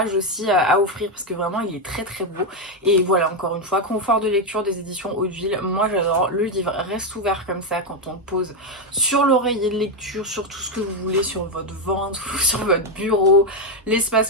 aussi à offrir parce que vraiment il est très très beau. Et voilà, encore une fois, confort de lecture des éditions Hauteville, moi j'adore. Le livre reste ouvert comme ça quand on le pose sur l'oreiller de lecture, sur tout ce que vous voulez, sur votre ventre, sur votre bureau.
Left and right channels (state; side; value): normal; both; correlation 0.06